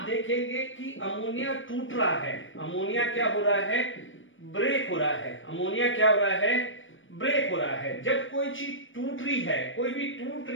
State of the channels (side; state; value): right; late; 0.56 ms